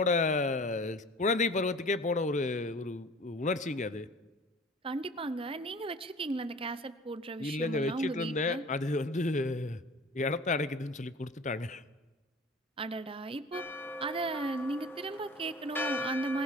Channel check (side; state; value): both; normal; correlation 0.43